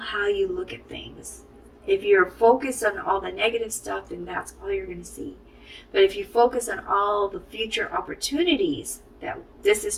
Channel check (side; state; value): both; identical; correlation 1.00